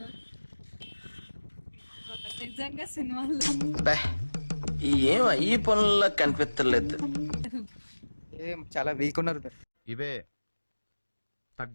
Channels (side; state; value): both; inverted; correlation -1.00